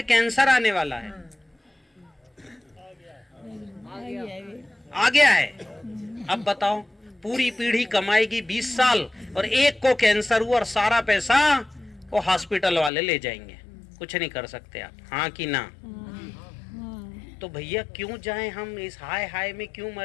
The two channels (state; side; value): drops out; right; at 12.9 s